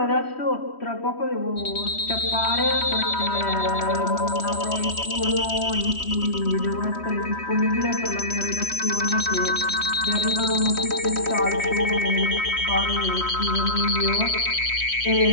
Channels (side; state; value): right; late; 3.1 ms